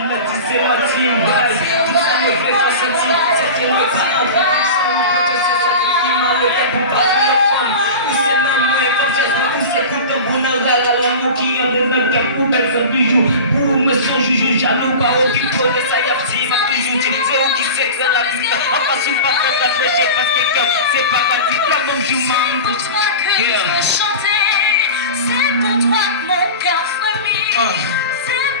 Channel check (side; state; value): both; inverted; correlation -0.31